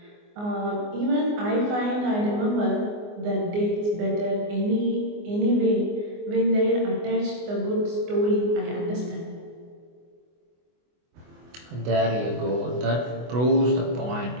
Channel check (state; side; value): late; left; 24 ms